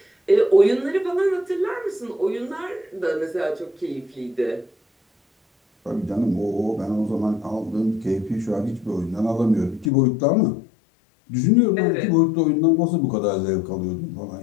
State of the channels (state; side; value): drops out; right; at 9.9 s